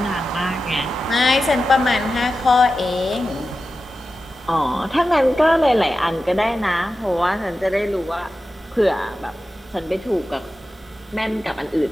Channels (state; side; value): normal; both; correlation 0.92